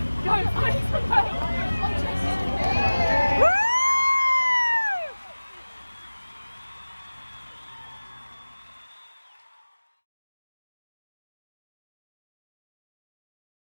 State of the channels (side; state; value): both; inverted; correlation -1.00